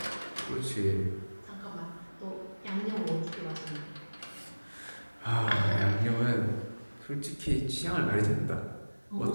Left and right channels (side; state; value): both; inverted; correlation -1.00